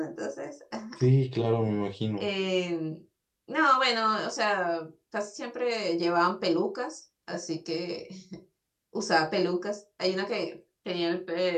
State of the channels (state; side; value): identical; both; correlation 1.00